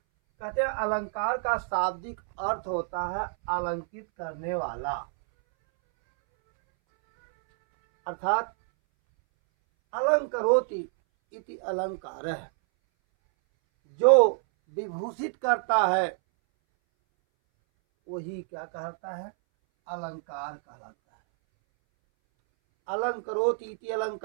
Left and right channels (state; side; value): silent; left; 59 dB below the other